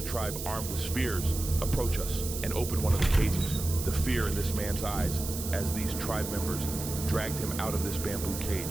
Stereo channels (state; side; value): noise; right; hiss, 7 dB below the sound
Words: tribe, armed with spears, approach us and open one of the cages. The fear in this man's eyes as these tribe members dragged him out of this bamboo